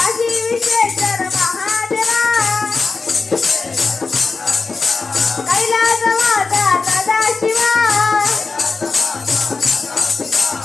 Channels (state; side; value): quieter; right; 4.2 dB